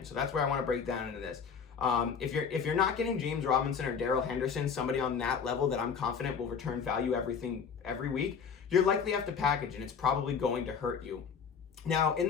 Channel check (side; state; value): right; quieter; 6.4 dB